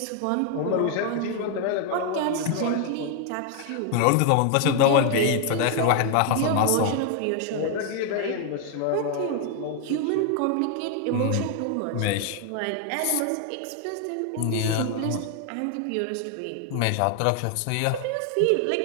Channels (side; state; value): both; different; correlation 0.00